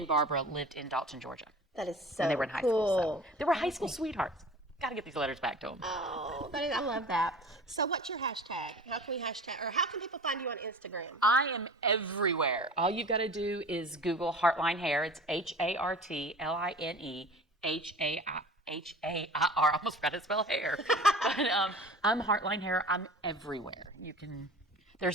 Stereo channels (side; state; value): both; normal; correlation 0.40